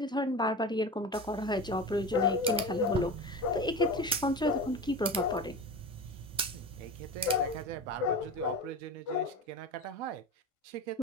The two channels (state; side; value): normal; both; correlation 0.29